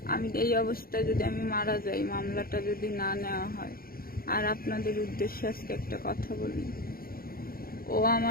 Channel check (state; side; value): late; right; 0.43 ms